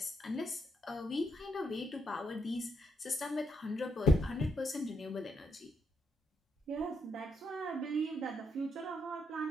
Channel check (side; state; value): both; normal; correlation 0.77